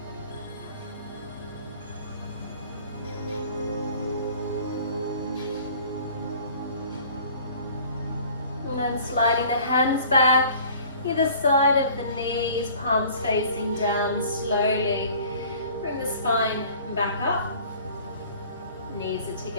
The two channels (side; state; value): both; inverted; correlation -0.49